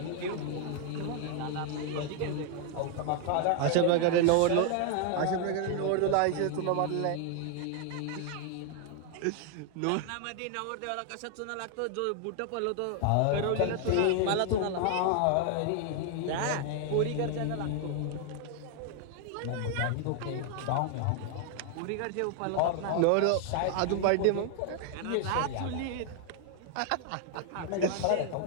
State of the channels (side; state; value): both; different; correlation 0.00